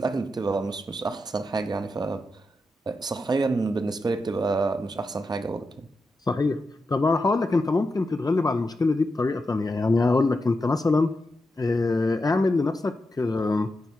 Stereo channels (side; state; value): both; normal; correlation 0.88